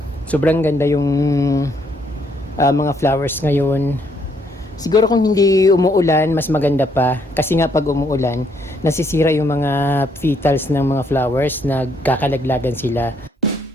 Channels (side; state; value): both; normal; correlation 0.71